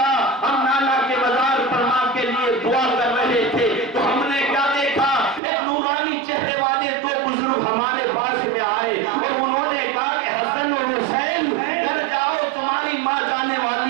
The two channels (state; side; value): drops out; left; at 5.4 s